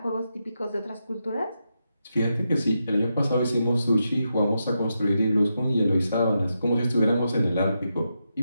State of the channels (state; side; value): inverted; both; correlation -0.86